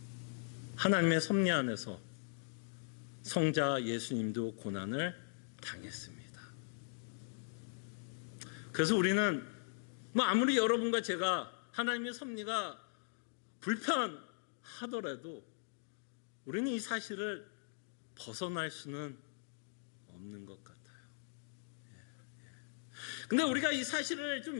하나님의 섭리 안에서 성자 예수님도 고난을 당했습니다. 그래서 우리는 아무리 여러분과 제가 하나님의 섭리가 불편하더라도 우리는 이 사실을 벗어날 수는 없는 것 같아요. 근데 우리가 이 사실을 좀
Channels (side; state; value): right; silent; digital silence